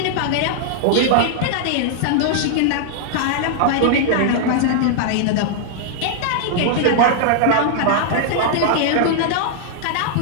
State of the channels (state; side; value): different; both; correlation -0.01